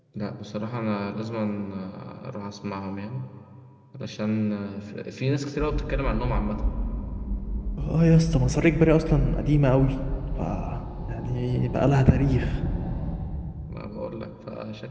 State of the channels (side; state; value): both; identical; correlation 1.00